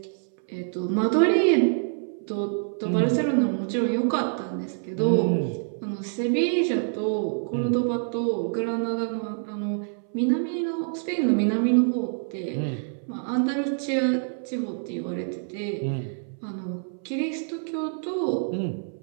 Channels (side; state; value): left; silent; 61 dB below the other